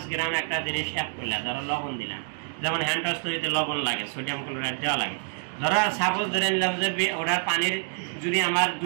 গ্রাম একটা জিনিস অ্যাড করলে, ধরো লবণ দিলাম, যেমন হ্যান্ড ওয়াশ তৈরিতে লবণ লাগে, সোডিয়াম ক্লোরাইড দেওয়া লাগে। ধরো সাপোজ ধরে নিলাম যে ওটার পানির যদি আমার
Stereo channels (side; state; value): left; silent; 60 dB below the other